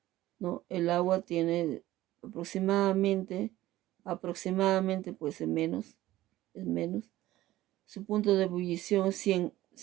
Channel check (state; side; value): quieter; left; 15.7 dB